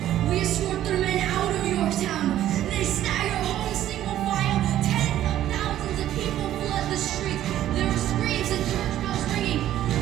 We escort their men out of Yorktown. They stagger home single file. Tens of thousands of people flood the streets. There are screams and church bells ringing.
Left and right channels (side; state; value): left; quieter; 12.5 dB